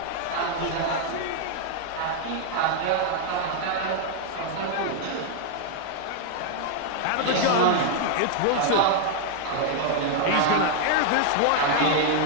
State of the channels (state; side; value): different; both; correlation 0.00